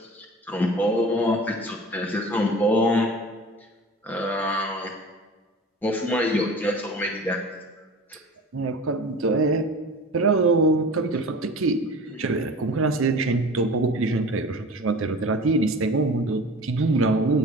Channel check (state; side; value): normal; both; correlation 0.39